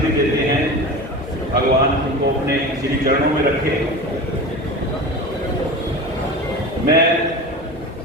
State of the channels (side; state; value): both; normal; correlation 0.31